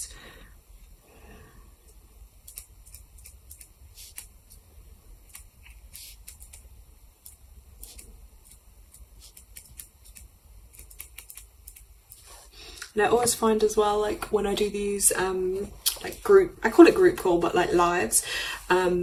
And I always find as well, like when I do these like group, I call it group call, but like lives,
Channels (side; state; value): both; identical; correlation 1.00